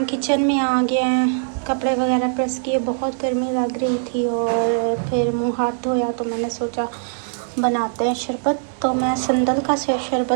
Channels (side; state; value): left; silent; 65 dB below the other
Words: किचन में आ गए हैं। कपड़े वगैरह प्रेस किए, बहुत गर्मी लग रही थी और फिर मुँह हाथ धोया, तो मैंने सोचा बनाते हैं शरबत। तो मैं संदल का